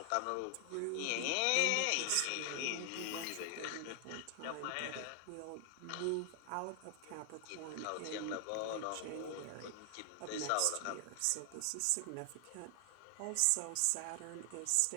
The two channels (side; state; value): both; different; correlation 0.00